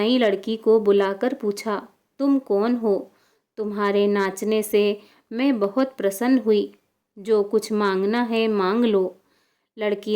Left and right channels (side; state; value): both; identical; correlation 1.00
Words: लड़की को बुलाकर पूछा, तुम कौन हो? तुम्हारे नाचने से मैं बहुत प्रसन्न हुई। जो कुछ मांगना है मांग लो। लड़की